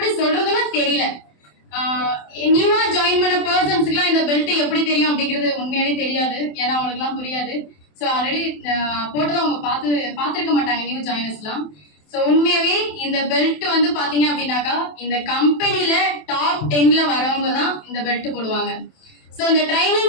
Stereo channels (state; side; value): late; right; 27 ms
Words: சொல்றதுன்னு தெரியல. நியூவா ஜாயின் பண்ண பர்சன்ஸுக்குலாம் இந்த பெல்ட் எப்படி தெரியும் அப்படிங்கிறது உண்மையாவே தெரியாது. ஏன்னா அவங்களுக்குலாம் புரியாது. ஸோ ஆல்ரெடி போட்டதை அவங்க பார்த்துருக்க மாட்டாங்க நியூ ஜாயினர்ஸ்லாம். ஸோ உண்மையாவே இந்த பெல்ட் வந்து பாத்தீங்க அப்படின்னாக்கா இந்த கம்பெனில டாப் 10ல வரவங்க தான் இந்த பெல்ட் போடுவாங்க. ஸோ இந்த